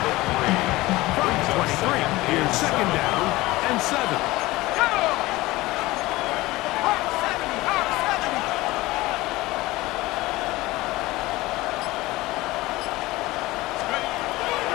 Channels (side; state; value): right; quieter; 19.4 dB